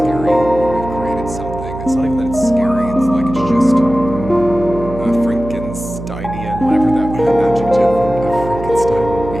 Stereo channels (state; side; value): noise; right; hum, 9 dB below the sound